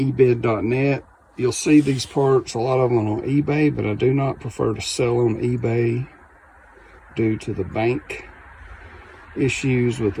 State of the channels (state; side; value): identical; both; correlation 1.00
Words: You'll see these parts, a lot of them on eBay, but I do not prefer to sell on eBay due to the bank issues with